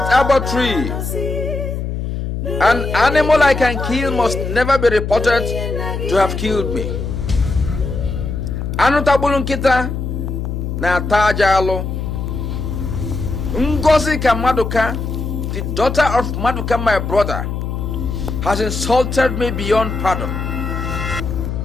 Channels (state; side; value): noise; left; hum, 4 dB below the sound